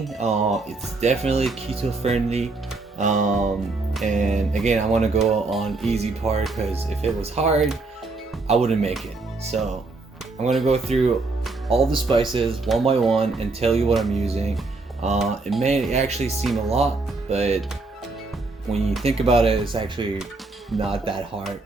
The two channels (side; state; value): left; quieter; 3.5 dB